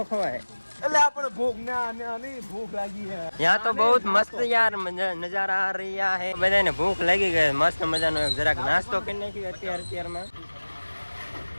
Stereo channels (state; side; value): inverted; both; correlation -1.00